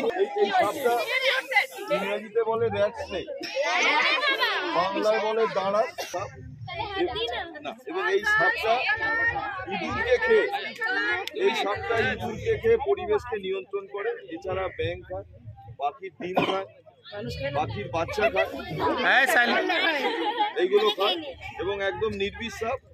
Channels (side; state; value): both; identical; correlation 1.00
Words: ইংরেজিতে বলে র্যাটস্নেক, বাংলায় বলে দাঁড়া সাপ। এবং এই সাপটা ইঁদুরকে খেয়ে পরিবেশকে নিয়ন্ত্রণ করে। এছাড়া ব্যাঙ খায়, পাখির ডিম খায়, পাখির বাচ্চা খায়, এইগুলো খায়। এবং একদম নির্বিষ সাপ।